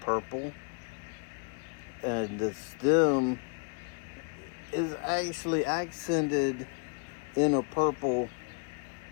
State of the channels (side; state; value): right; quieter; 37.8 dB